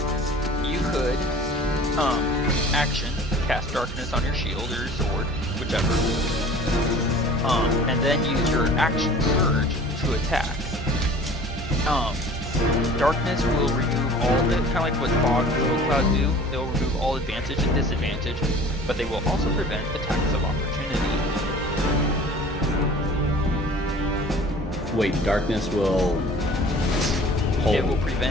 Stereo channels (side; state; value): both; normal; correlation 0.45